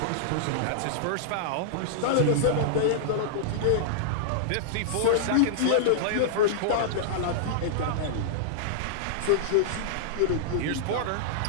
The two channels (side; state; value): both; different; correlation -0.02